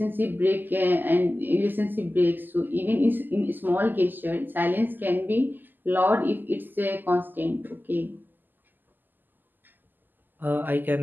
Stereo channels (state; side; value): late; left; 0.089 ms